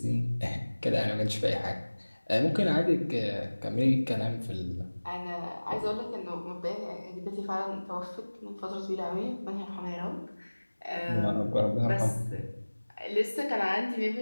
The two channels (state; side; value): inverted; both; correlation -1.00